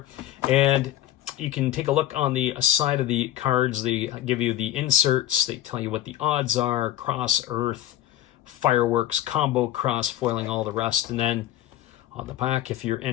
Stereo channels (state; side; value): quieter; right; 13.5 dB